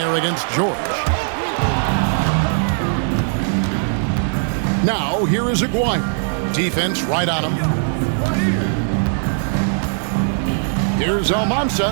against George. Now, here is Aguirre. Defense right on him. Here's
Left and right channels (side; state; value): left; silent; digital silence